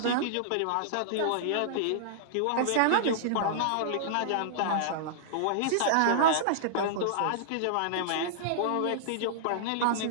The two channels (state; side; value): different; both; correlation -0.02